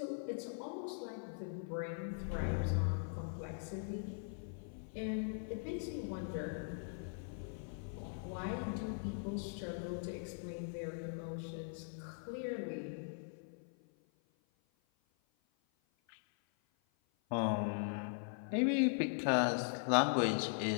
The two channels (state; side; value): silent; right; 51 dB below the other